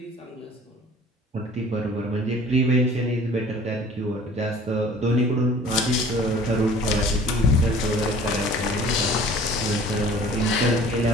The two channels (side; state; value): both; normal; correlation 0.48